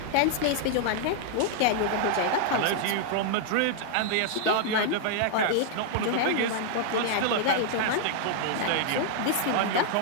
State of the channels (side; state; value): both; different; correlation -0.01